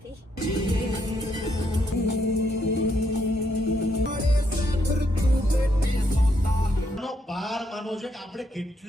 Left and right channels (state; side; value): normal; both; correlation 0.75